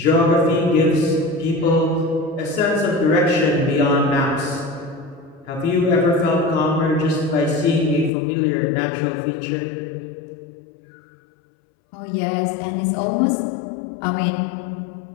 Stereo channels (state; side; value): drops out; right; at 8.1 s